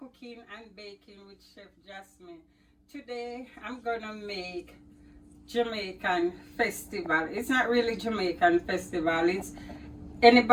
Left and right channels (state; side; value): identical; both; correlation 1.00